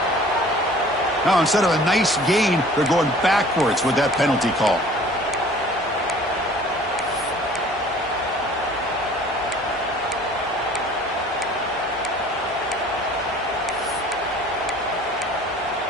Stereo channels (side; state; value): both; normal; correlation 0.49